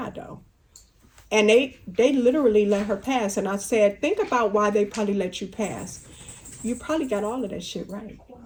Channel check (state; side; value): identical; both; correlation 1.00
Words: though. And they literally let her pass. And I said, think about why they probably let you pass. You probably got all of that shit right.